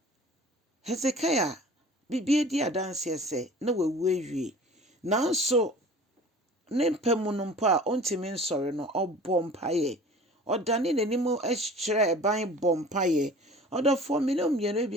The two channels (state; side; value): normal; both; correlation 0.44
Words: Hezekiah bibie di adanseɛ sɛ na wawu awie. Nanso ne mpa mu no mpo a ɔntumi nsɔre no, ɔbɔ mpaeɛ. Ɔdane n'anim kyerɛ ɛban bɔ mpaeɛ. Ɔdɔfoɔ me ne mmienu